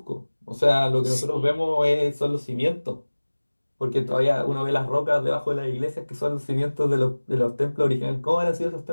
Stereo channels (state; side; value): inverted; both; correlation -1.00